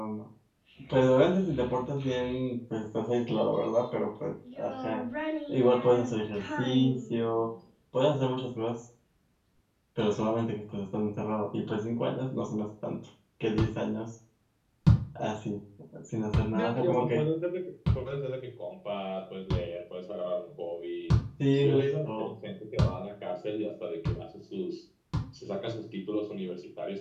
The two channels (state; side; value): identical; both; correlation 1.00